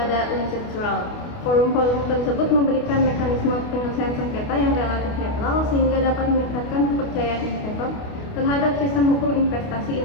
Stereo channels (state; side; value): late; right; 28 ms